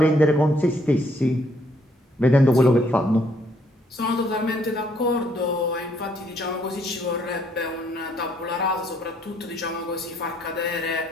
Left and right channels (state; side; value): normal; both; correlation 0.69